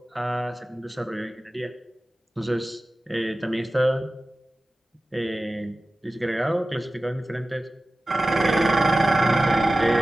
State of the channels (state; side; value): normal; both; correlation 0.96